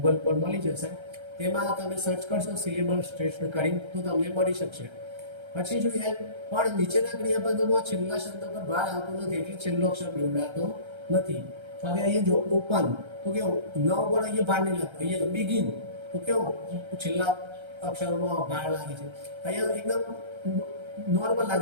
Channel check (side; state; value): left; late; 1.3 ms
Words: પર મળી જશે, તેમાં તમે સર્ચ કરશો સિલેબલ સ્ટ્રેસનો કરીને તો તમને મળી શકશે. પછી જોઈએ પણ નીચેના ક્રિયાપદોમાં છેલ્લા શબ્દ પર ભાર આવતો નથી એટલે છેલ્લો અક્ષર બેવડાતો નથી. હવે અહીંયા જો ઓપન તો કેવું ન ઉપર અહીંયા ભાર નહીં લાગતો, અહીંયા બિગિન તો કેવું છેલ્લા અક્ષરોમાં ભાર લાગે છે, અહીંયા એકદમ નોર્મલ